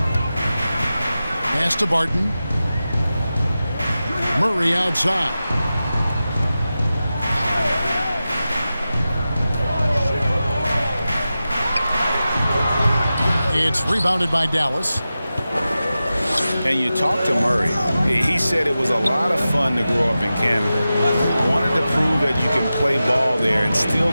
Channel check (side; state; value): both; inverted; correlation -0.94